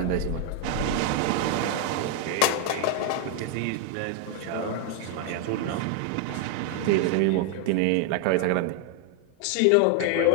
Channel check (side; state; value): both; different; correlation 0.01